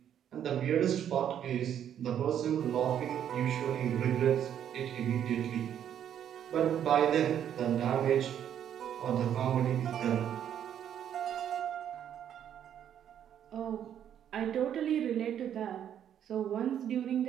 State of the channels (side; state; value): left; quieter; 9.7 dB